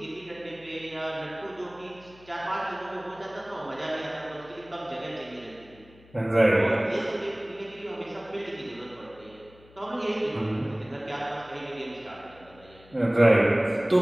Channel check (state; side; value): noise; left; hum, 25 dB below the sound